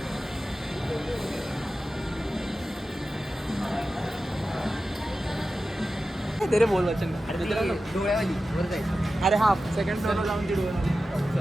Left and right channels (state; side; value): normal; both; correlation 0.93